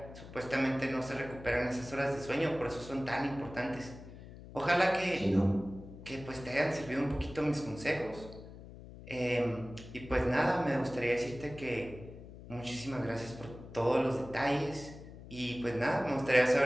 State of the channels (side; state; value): left; noise; hum, 15 dB below the sound